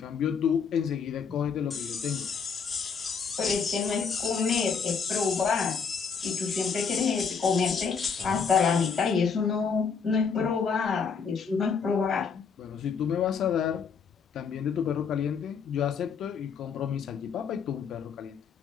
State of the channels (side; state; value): right; quieter; 6.0 dB